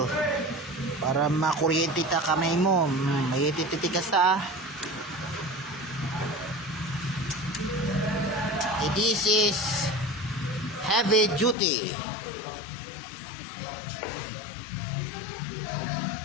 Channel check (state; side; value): drops out; right; at 11.6 s